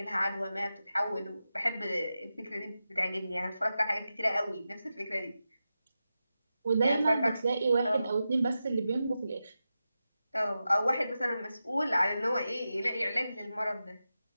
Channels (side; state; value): both; inverted; correlation -0.91